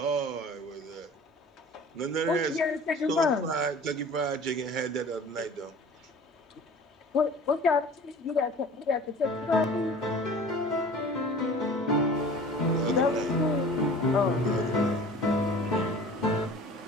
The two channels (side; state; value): both; normal; correlation 0.43